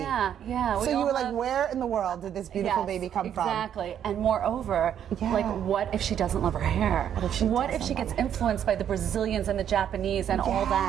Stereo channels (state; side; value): quieter; left; 9.5 dB